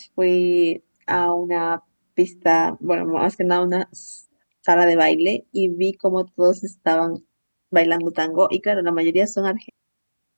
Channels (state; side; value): inverted; both; correlation -1.00